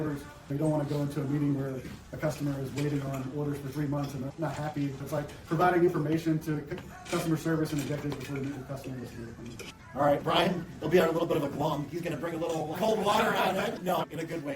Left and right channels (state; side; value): identical; both; correlation 1.00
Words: They don't want to go into a meeting where a customer is waiting on orders for 3 months and they're not happy. It's like providing information to customer service and executives before they meet with customers. All right, Brian, he'll be on a little bit of a glum. He's going to bring a little cold water on it. No, in a good way,